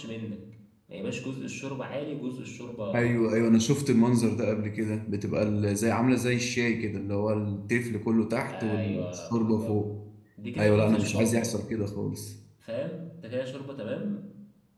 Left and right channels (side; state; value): both; identical; correlation 1.00